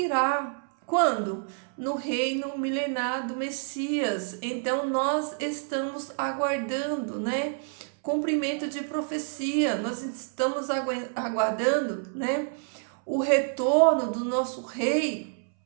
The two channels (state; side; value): silent; left; 59 dB below the other